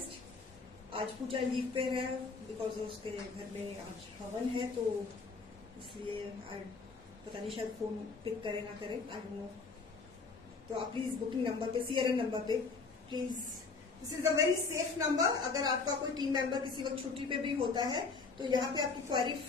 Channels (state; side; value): quieter; right; 4.4 dB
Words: आज पूजा लीव पे है बिकॉज उसके घर में आज हवन है तो इसलिए पता नहीं शायद फोन पिक करे ना करे, आई डोंट नो। तो आप प्लीज बुकिंग नंबर पे, CRN नंबर पे please, this is a very safe number. अगर आपका कोई टीम मेंबर किसी वक्त छुट्टी पे भी होता है तो यहाँ पे आपकी क्वेरी